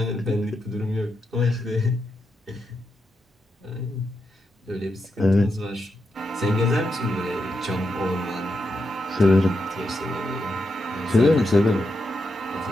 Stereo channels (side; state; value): both; normal; correlation 0.85